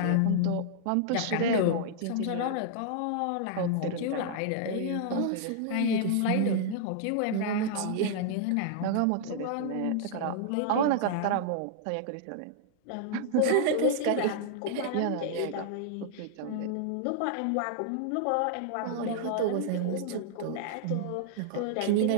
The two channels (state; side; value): different; both; correlation -0.01